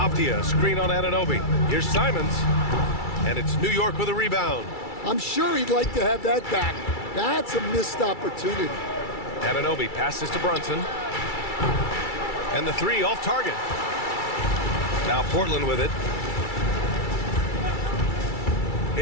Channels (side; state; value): right; late; 2.3 ms